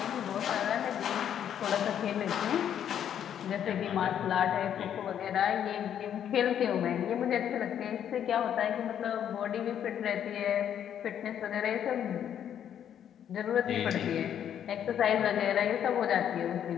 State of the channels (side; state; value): right; quieter; 9.5 dB